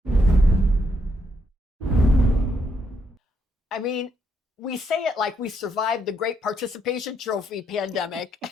I mean, we say it like we survived the great participation trophy pandemic.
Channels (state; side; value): normal; both; correlation 0.76